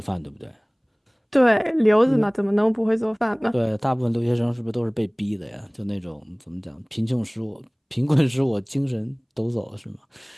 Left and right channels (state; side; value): identical; both; correlation 1.00